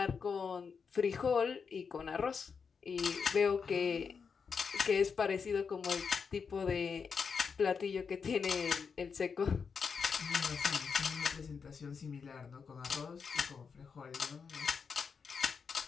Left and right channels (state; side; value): quieter; right; 5.8 dB